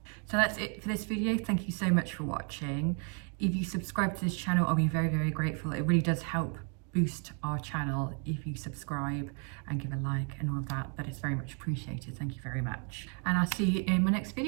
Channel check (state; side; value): quieter; left; 39.2 dB